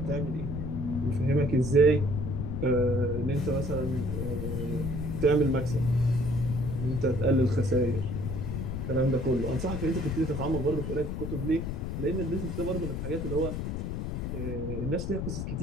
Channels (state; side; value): noise; left; rumble, 3 dB below the sound